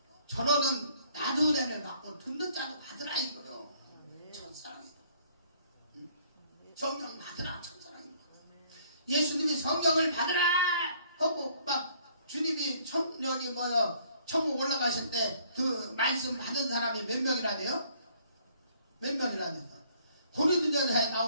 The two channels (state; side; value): inverted; both; correlation -0.62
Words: 저러는 나도 은혜를 받고 듣는 자도 받으라 이거요. 첫사랑이다. 성령 받으라 첫사랑이다. 예수님이 성령을 받으라 하고 막 주님이 천국 올라가실 때 그 말씀 받은 사람이 몇 명이나 돼요? 몇 명이나 돼요? 고린도전서에